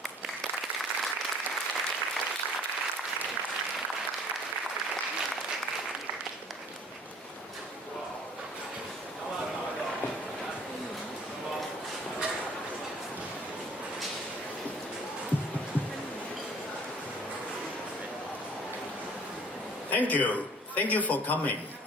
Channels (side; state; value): both; normal; correlation 0.53